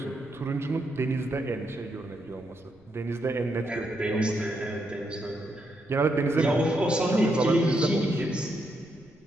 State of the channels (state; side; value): noise; right; rumble, 30 dB below the sound